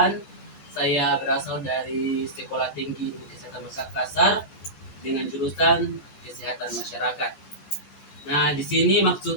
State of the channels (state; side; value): late; right; 14 ms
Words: Saya berasal dari Sekolah Tinggi Ilmu Kesehatan Makassar dengan jurusan Kesehatan Masyarakat. Nah, di sini